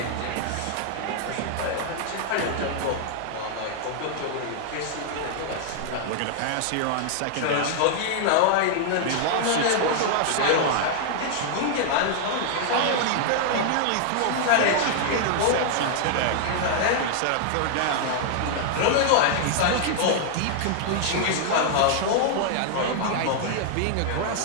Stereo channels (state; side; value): different; both; correlation 0.00